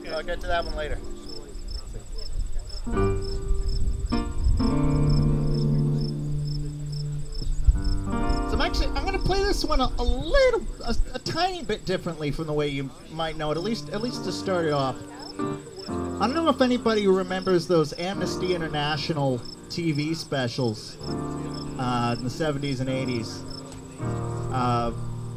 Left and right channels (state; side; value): identical; both; correlation 1.00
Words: get to that one later. So I'm going to play this one a tiny bit differently from the way you might know it, at least to start it off. I don't know if anybody remembers those Amnesty International TV specials in the 70s and 80s.